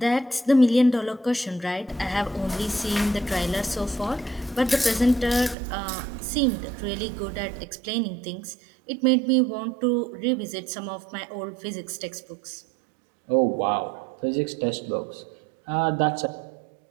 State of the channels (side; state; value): left; drops out; at 5.6 s